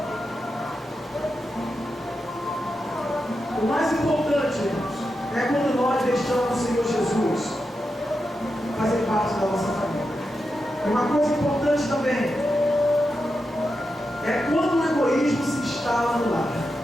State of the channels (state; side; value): normal; both; correlation 0.88